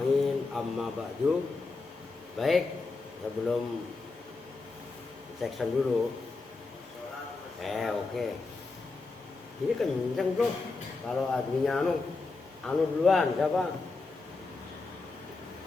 amma ba'du. Baik, sebelum section dulu. Oke. Ini kenceng bro. Kalau adminnya anu duluan siapa?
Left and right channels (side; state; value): right; quieter; 3.9 dB